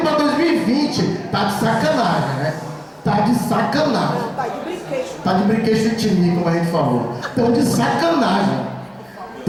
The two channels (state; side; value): identical; both; correlation 1.00